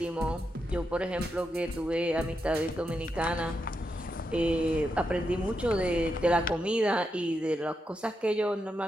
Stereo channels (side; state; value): both; normal; correlation 0.85